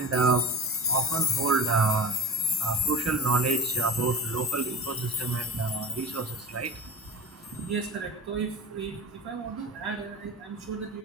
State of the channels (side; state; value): both; normal; correlation 0.33